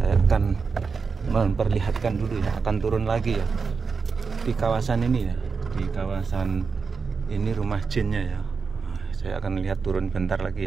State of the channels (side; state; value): left; quieter; 5.1 dB